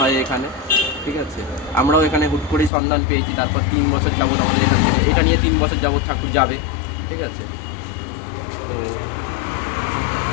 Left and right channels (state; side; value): drops out; right; at 2.7 s